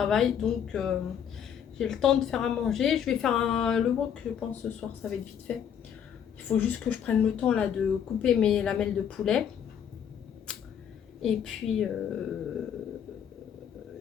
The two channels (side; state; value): right; quieter; 8.6 dB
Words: Donc j'ai le temps de faire à manger. Je vais faire le wok, je pense, ce soir. Ça va être vite fait. Il faut juste que je prenne le temps là de couper mes lamelles de poulet. Et puis